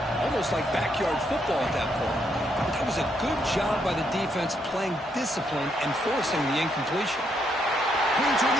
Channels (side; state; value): both; normal; correlation 0.76